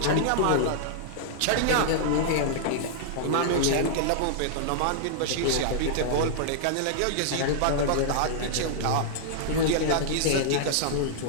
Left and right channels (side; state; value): both; different; correlation -0.02